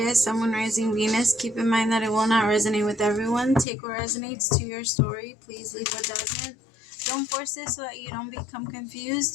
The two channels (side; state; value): right; drops out; at 3.7 s